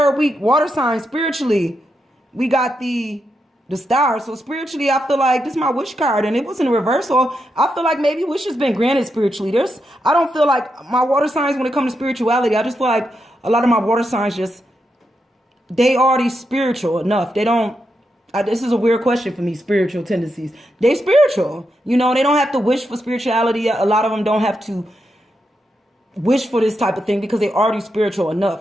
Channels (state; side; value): normal; both; correlation 0.84